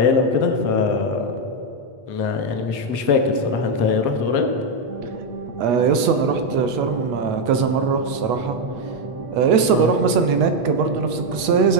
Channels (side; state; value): left; late; 8.3 ms